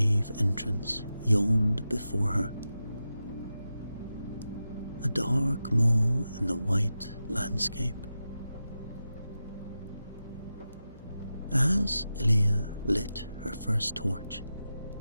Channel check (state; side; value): inverted; both; correlation -0.92